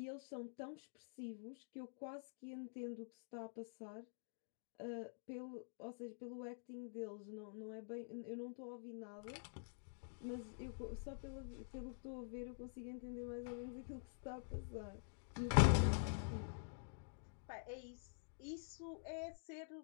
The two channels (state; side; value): silent; right; digital silence